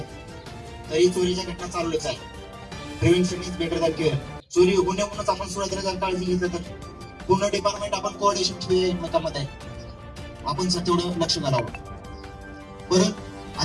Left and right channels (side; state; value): both; identical; correlation 1.00